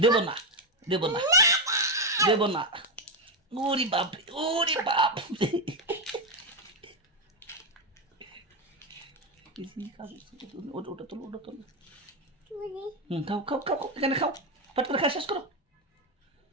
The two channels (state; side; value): normal; both; correlation 0.08